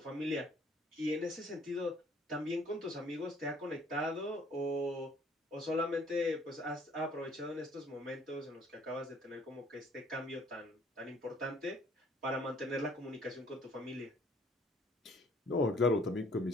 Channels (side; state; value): both; normal; correlation 0.59